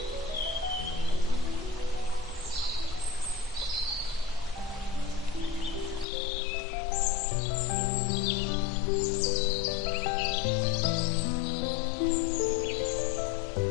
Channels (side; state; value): right; drops out; at 6.1 s